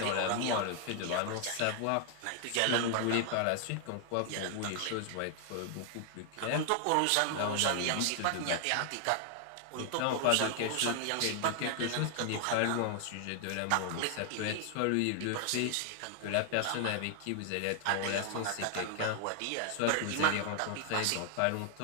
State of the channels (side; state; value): both; different; correlation 0.00